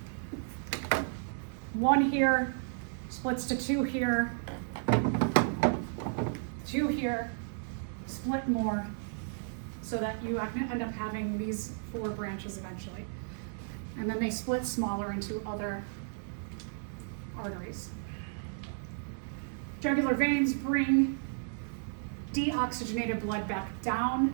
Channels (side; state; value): left; silent; digital silence